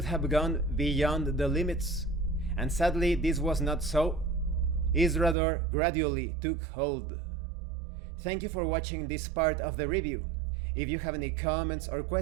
have gone beyond the limits, and sadly this was not so. Isrador gradually took hold. Thank you for watching this part of the review. If you have any comments or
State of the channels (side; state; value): left; drops out; at 5.4 s